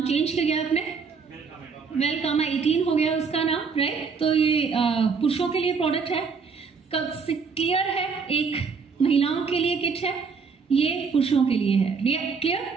चेंज किया गया आपने, वेलकामा 18 हो गया उसका नाम, राइट। तो ये पुरुषों के लिए प्रोडक्ट है, क्लियर है, एक महिलाओं के लिए किट है, ये पुरुषों के लिए है,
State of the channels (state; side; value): quieter; left; 5.3 dB